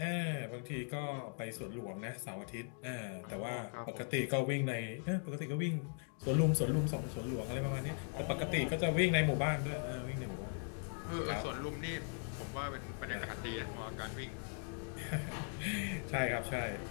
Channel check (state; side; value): silent; right; 52 dB below the other